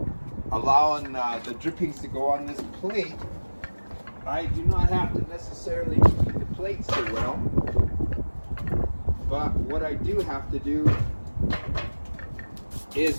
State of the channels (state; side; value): inverted; both; correlation -1.00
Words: allowing the drippings to go on this plate, I do not have to necessarily keep the plate so well. But what I do have to do is